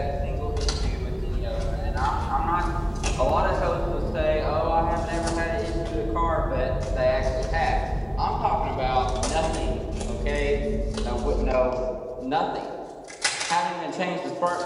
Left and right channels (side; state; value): both; identical; correlation 1.00